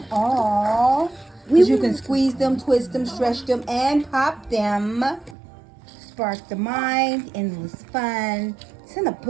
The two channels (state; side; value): drops out; left; at 5.4 s